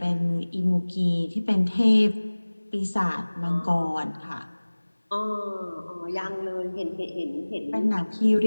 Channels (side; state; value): both; inverted; correlation -1.00